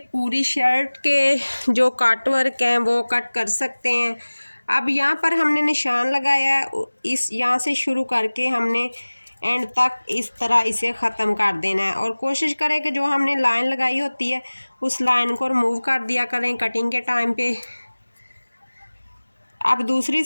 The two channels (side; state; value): both; inverted; correlation -1.00